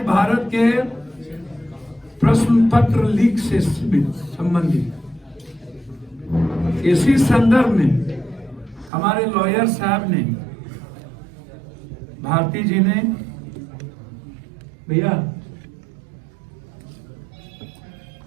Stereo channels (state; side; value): drops out; left; at 8.9 s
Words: भारत के प्रश्न पत्र लीक से संबंधित। इसी संदर्भ में हमारे लॉयर साहब ने, भारती जी ने, भैया,